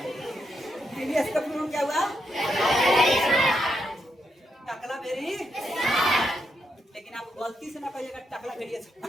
TBS का पूर्ण क्या हुआ? टकला वेरी, लेकिन आप गलती से ना कहिएगा टकला वेरियस,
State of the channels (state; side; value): normal; both; correlation 0.81